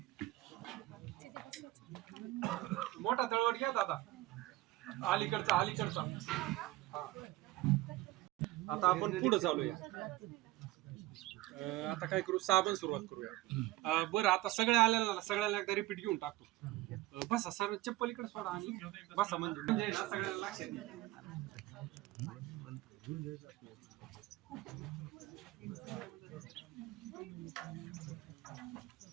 मोठा तळवट घ्या दादा, अलीकडचा. आता आपण पुढे चालूया. आता काय करू, साबण सुरुवात करूया. बरं, आता सगळे आलेला सगळ्याला एकदा रिपीट घेऊन टाकतो. बसा सर, चप्पल इकडे सोडा आणि बसा. म्हणजे ना सगळ्याला लक्षात येईल.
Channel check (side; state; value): left; quieter; 17.2 dB